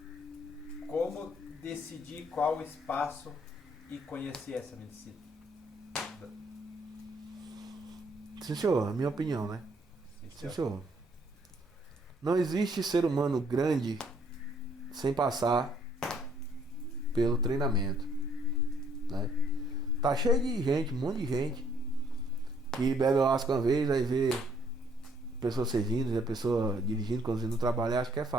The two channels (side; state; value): both; normal; correlation 0.65